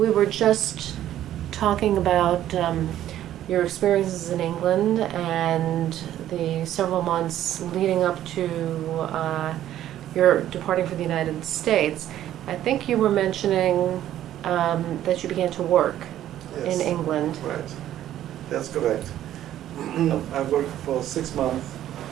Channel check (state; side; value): quieter; left; 12.2 dB